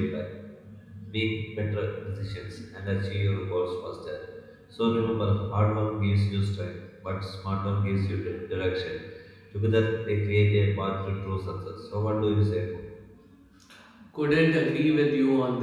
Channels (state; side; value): identical; both; correlation 1.00